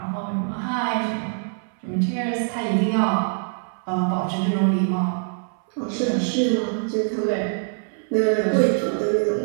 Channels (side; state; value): left; silent; 59 dB below the other